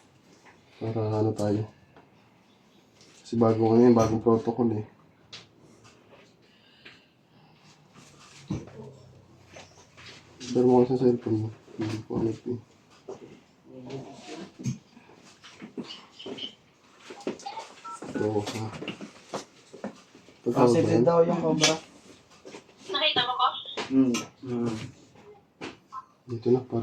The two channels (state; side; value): identical; both; correlation 1.00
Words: Para tayo. Kasi bagong protocol eh. Pero mo sa cellphone mo. Hindi ko alam eh. Ito ha. Positive daw yung cobra. Nakita mo ko? Dito na para